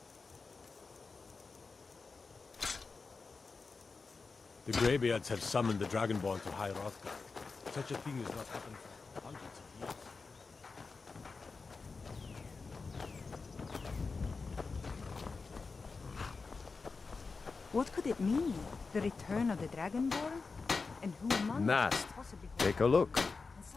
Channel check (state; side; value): quieter; right; 4.4 dB